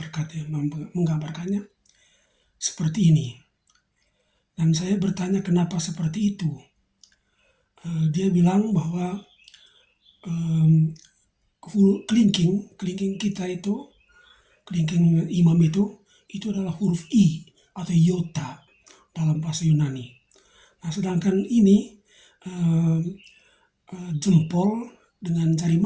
menggambarkannya seperti ini. Dan saya bertanya kenapa seperti itu. Dia bilang bahwa kelingking kita itu, kelingking imam itu adalah huruf I atau iota dalam bahasa Yunani. Nah, sedangkan ini jempol dengan jari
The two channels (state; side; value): identical; both; correlation 1.00